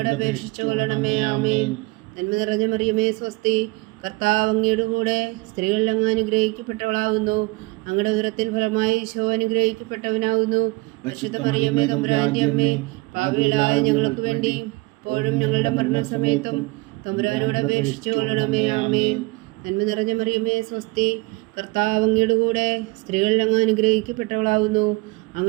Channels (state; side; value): quieter; left; 23.5 dB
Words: അപേക്ഷിച്ചു കൊള്ളണമേ. ആമേൻ. നന്മ നിറഞ്ഞ മറിയമേ സ്വസ്തി, കർത്താവ് അങ്ങയുടെ കൂടെ സ്ത്രീകളിൽ അങ്ങ് അനുഗ്രഹിക്കപ്പെട്ടവളാകുന്നു. അങ്ങയുടെ ഉദരത്തിൻ ഫലമായി ഈശോ അനുഗ്രഹിക്കപ്പെട്ടവനാകുന്നു. പരിശുദ്ധ മറിയമേ തമ്പുരാന്റെ അമ്മേ, പാപികളായ ഞങ്ങൾക്ക് വേണ്ടി ഇപ്പോഴും ഞങ്ങളുടെ മരണസമയത്തും തമ്പുരാനോട് അപേക്ഷിച്ചു കൊള്ളണമേ. ആമേൻ. നന്മ നിറഞ്ഞ മറിയമേ സ്വസ്തി, കർത്താവ് അങ്ങയുടെ കൂടെ സ്ത്രീകളിൽ അങ്ങ് അനുഗ്രഹിക്കപ്പെട്ടവളാകുന്നു.